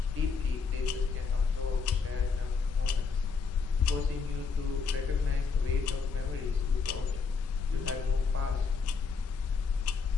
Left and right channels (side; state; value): right; quieter; 5.2 dB